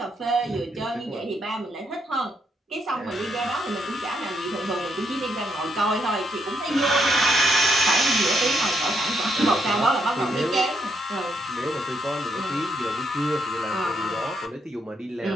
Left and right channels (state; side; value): normal; both; correlation 0.76